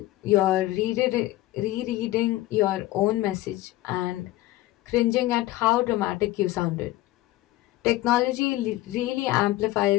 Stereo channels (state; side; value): quieter; right; 17.0 dB